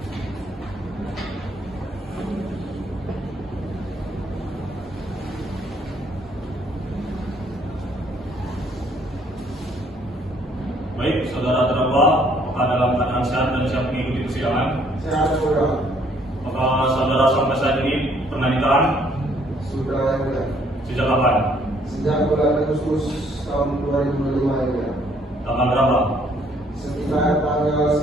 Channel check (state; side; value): normal; both; correlation 0.64